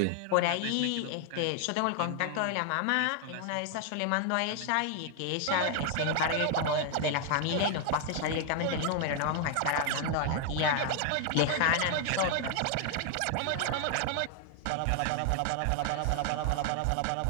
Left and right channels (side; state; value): both; different; correlation 0.00